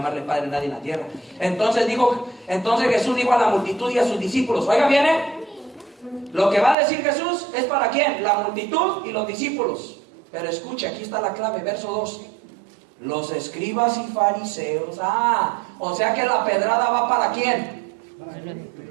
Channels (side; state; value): left; drops out; at 6.8 s